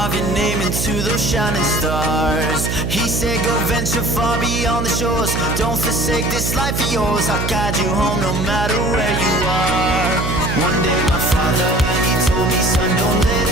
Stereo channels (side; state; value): right; noise; hum, 2 dB below the sound